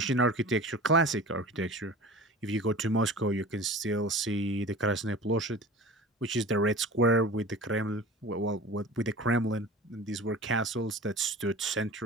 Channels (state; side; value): normal; both; correlation 0.38